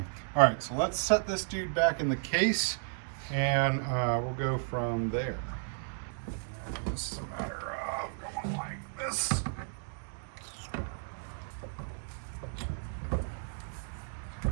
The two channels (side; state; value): left; silent; digital silence